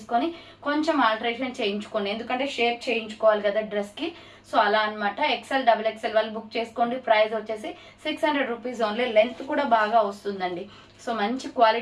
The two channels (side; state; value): both; identical; correlation 1.00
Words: కొంచెం ఆల్టరేషన్ చేయించుకోండి, ఎందుకంటే షేప్ చేయించుకోవాలి కదా డ్రెస్కి. సో అలా అనమాట. XL XXL వాళ్ళు బుక్ చేసుకోండి. ప్రైస్ వచ్చేసి 600 రూపీస్ ఓన్లీ. లెంత్ కూడా బాగా వస్తుందండి. సో మంచి